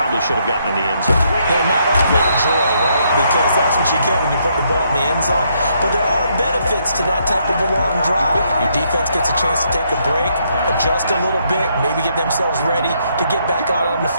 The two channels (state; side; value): inverted; both; correlation -0.73